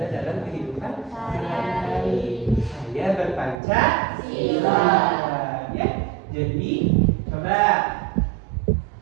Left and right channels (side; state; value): left; drops out; at 3.6 s